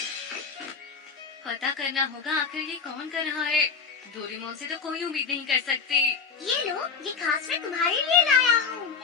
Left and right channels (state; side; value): quieter; right; 5.6 dB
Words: पता करना होगा आखिर ये कौन कर रहा है। डोरेमोन से तो कोई उम्मीद नहीं कर सकती। ये लो, ये खास मैं तुम्हारे लिए लाया हूँ।